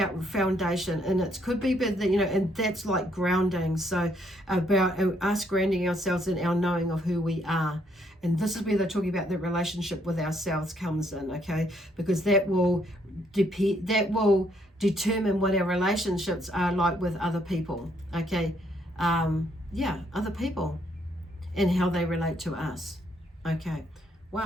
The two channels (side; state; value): both; normal; correlation 0.71